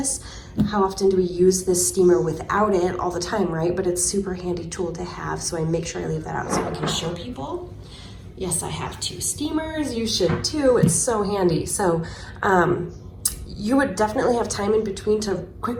How often do we use this steamer without it? All the time, right? But it's a super handy tool to have, so I make sure I leave that out so I can show people. Yes, I have 2 steamers. You should too. It's so handy. So you would definitely have time in between to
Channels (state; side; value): identical; both; correlation 1.00